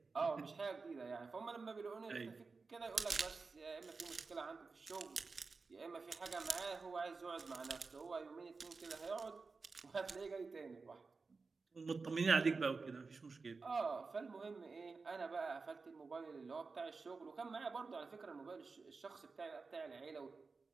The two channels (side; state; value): left; quieter; 4.3 dB